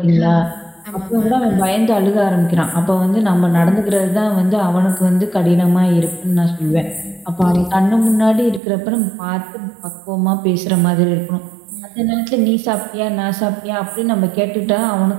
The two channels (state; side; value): drops out; left; at 8.6 s